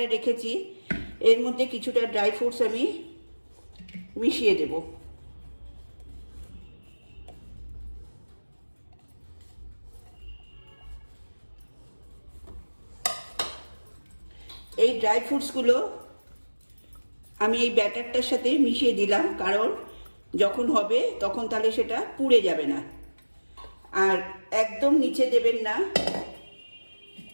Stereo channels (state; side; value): inverted; both; correlation -1.00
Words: রেখেছি, এর মধ্যে কিছুটা ড্রাই ফ্রুটস আমি মিশিয়ে দেব। এই ড্রাই ফ্রুটসগুলো আমি এই ব্যাটারটার সাথে মিশিয়ে দিলাম, কারণ যখন হবে তখন তাহলে সেটা পুড়ে যাবে না। আর একদম নিচে দেবেন না,